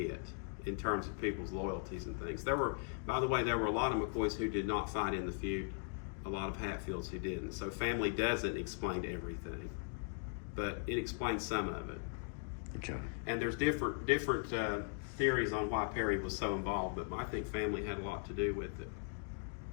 in terms of people's loyalties and things. By the way, there were a lot of McCoys who did not fight in the feud, a lot of Hatfields who didn't. So family doesn't explain everything, but it explains some of it. Okay. And there's different theories on why Perry was so involved, but I think family had a lot to do with it.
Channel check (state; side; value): silent; right; 52 dB below the other